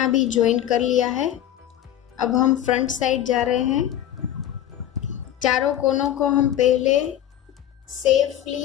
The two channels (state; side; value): quieter; right; 11.6 dB